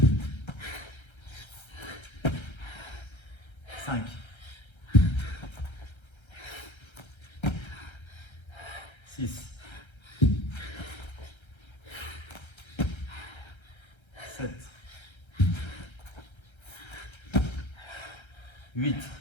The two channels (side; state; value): right; late; 1.3 ms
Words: 5. 6. 7. 8.